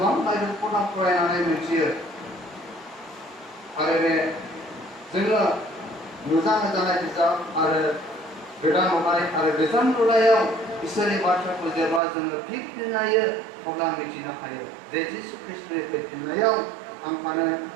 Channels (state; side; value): drops out; left; at 12.0 s